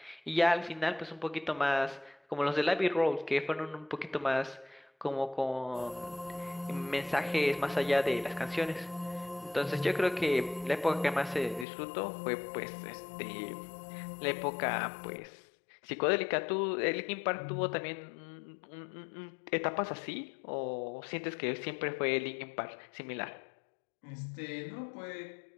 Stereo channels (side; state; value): right; drops out; at 11.7 s